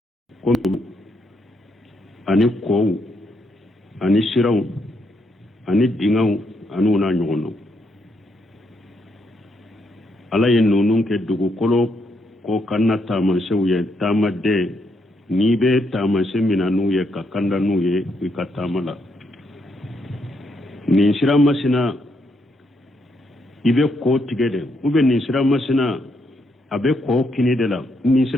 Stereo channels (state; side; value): normal; both; correlation 0.77